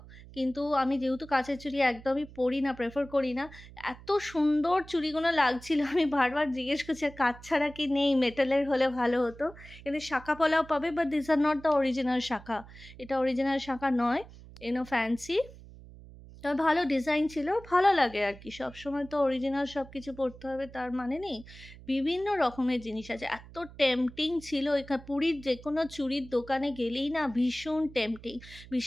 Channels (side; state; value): right; noise; hum, 18 dB below the sound